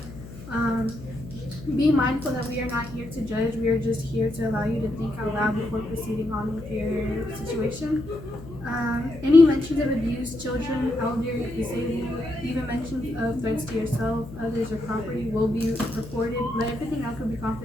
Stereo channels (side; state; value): left; noise; hum, 15 dB below the sound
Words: Be mindful that we are not here to judge. We are just here to allow you to think out loud before proceeding on with your situation. Any mentions of abuse, children, elder, disabled, even mentions of threats to yourself, others, or property will be reported, but everything else will be